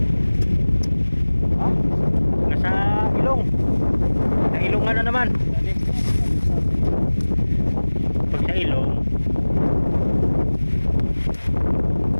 Ha? Nasa ilong. Sa ilong nga na naman. Pag sa ilong,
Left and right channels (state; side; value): inverted; both; correlation -1.00